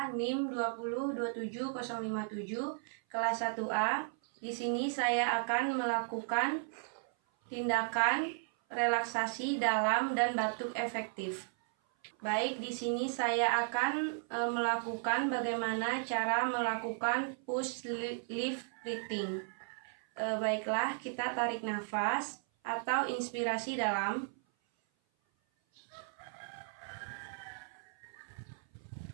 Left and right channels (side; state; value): left; silent; 54 dB below the other